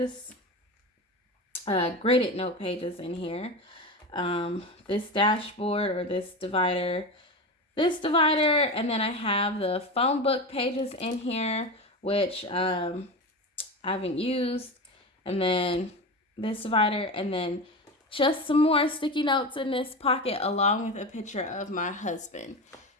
graded note pages in here. This dashboard, or this divider, and then I have the phone book pages in here, which I haven't used, and then this divider, and then just some more sticky notes in this pocket along with a picture of my husband.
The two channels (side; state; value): both; normal; correlation 0.24